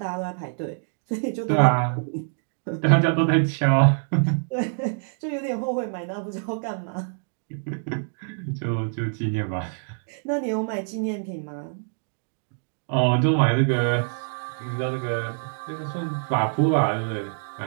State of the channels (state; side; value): silent; left; 61 dB below the other